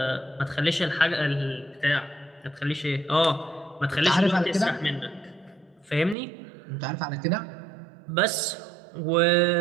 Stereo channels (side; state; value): left; drops out; at 6.2 s